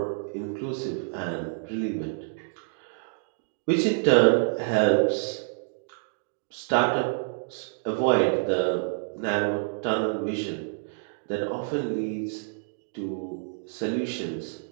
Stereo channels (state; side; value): silent; left; digital silence